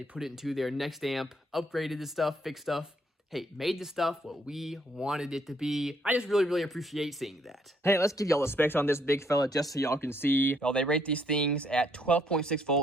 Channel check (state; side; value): normal; both; correlation 0.69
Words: put it into their next amp, upgraded the stuff, fixed stuff. Hey, made the stuff what we wanted it to be. I just really appreciate seeing that. Hey, let's give y'all the specs on this big fella just so y'all can see. Well, they rate these things at 12.6